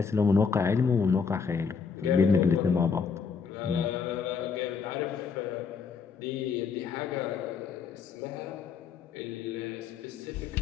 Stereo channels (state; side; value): quieter; right; 5.8 dB